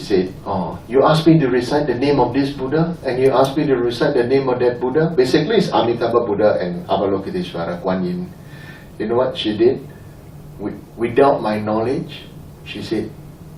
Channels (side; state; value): both; identical; correlation 1.00